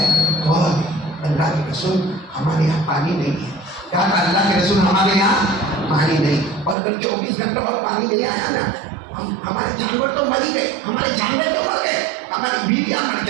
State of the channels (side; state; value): left; drops out; at 6.8 s